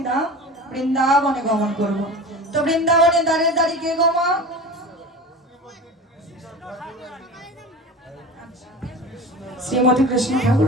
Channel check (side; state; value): both; normal; correlation 0.33